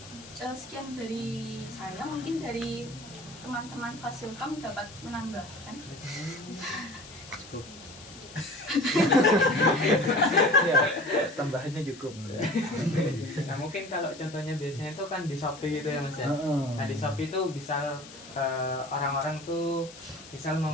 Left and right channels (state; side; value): noise; left; hiss, 18 dB below the sound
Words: sekian dari saya, mungkin dari teman-teman Fasilkom dapat menambahkan. Ya, tambahannya cukup. Nah mungkin kalau contohnya biasanya itu kan di Shopee gitu ya Mas ya. Nah di Shopee itu bisa orang-orang tuh misal